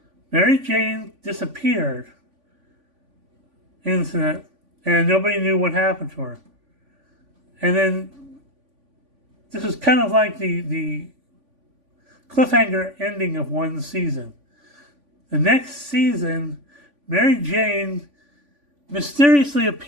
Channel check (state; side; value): late; left; 3.5 ms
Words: Mary Jane disappeared into that, and nobody knew what happened to her. And then, this was kind of like the cliffhanger ending of one season. The next season, Mary Jane mysteriously